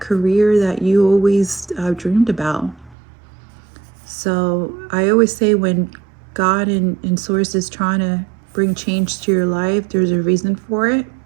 that you always dreamed about. So I always say when God and Source is trying to bring change to your life, there's a reason for it,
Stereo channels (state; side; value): drops out; left; at 3.0 s